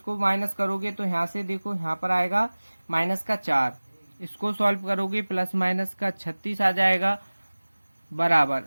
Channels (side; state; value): both; inverted; correlation -1.00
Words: माइनस करोगे तो यहाँ से देखो यहाँ पर आएगा माइनस का 4, इसको सॉल्व करोगे प्लस माइनस का 36 आ जाएगा